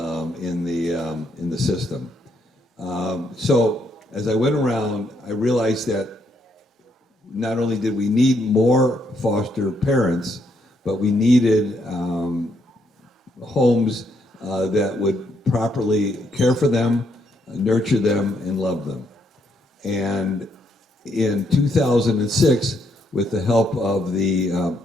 the system. So as I went around, I realized that not only did we need more foster parents, but we needed homes that would properly care for them, nurture them, and love them. And in 2006, with the help of the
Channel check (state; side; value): normal; both; correlation 0.75